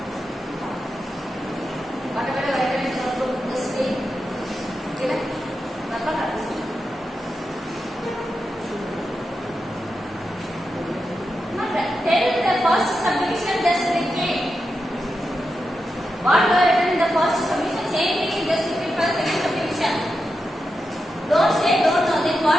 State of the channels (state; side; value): normal; both; correlation 0.88